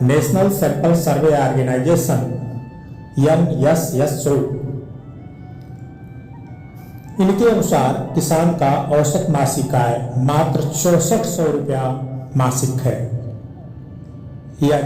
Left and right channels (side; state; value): both; identical; correlation 1.00